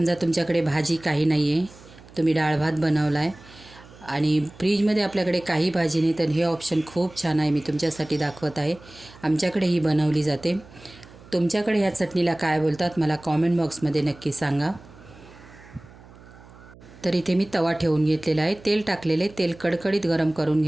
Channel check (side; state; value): right; noise; hum, 22 dB below the sound